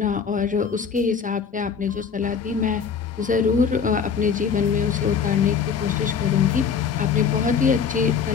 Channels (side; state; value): right; quieter; 6.5 dB